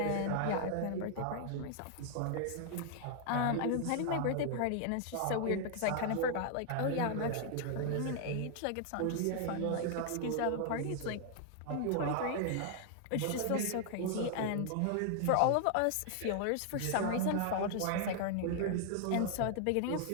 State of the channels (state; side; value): different; both; correlation 0.00